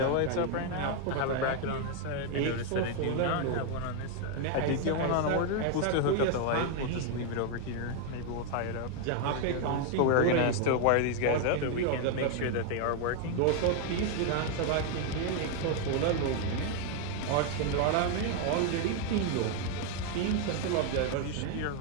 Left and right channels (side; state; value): both; different; correlation 0.01